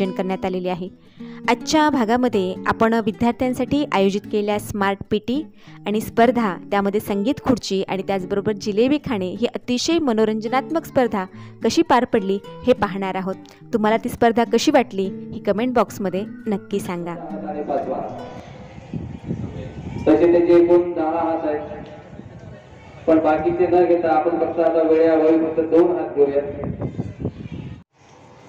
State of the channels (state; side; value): identical; both; correlation 1.00